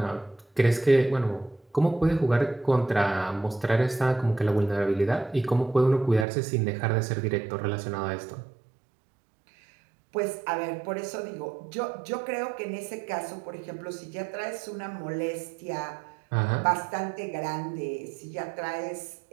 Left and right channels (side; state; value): left; drops out; at 6.2 s